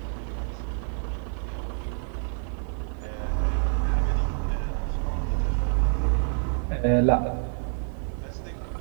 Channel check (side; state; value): left; silent; 60 dB below the other